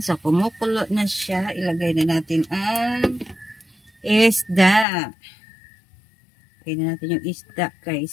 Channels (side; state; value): right; drops out; at 4.9 s